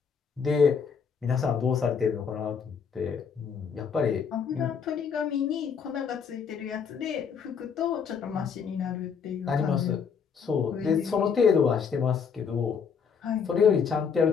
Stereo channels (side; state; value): right; quieter; 6.4 dB